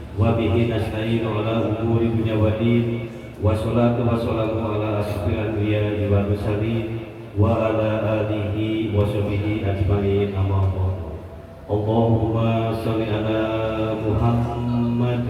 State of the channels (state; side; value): identical; both; correlation 1.00